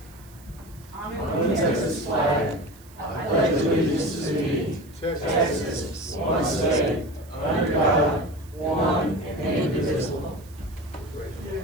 On the Texas flag, I pledge allegiance to thee, Texas, one state, under God, one and indivisible.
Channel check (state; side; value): noise; right; hiss, 25 dB below the sound